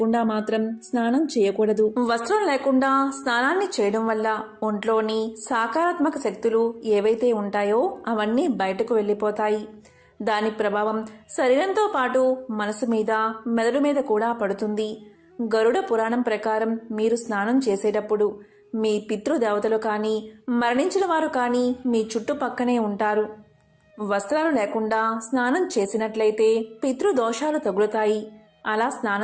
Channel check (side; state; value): both; identical; correlation 1.00